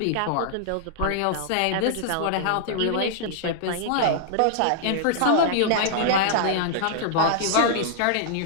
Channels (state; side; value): different; both; correlation -0.01